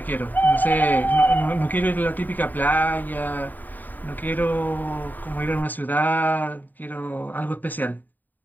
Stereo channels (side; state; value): right; late; 0.087 ms